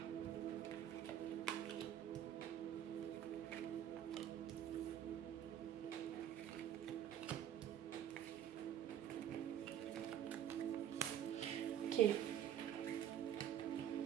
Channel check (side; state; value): left; quieter; 10.5 dB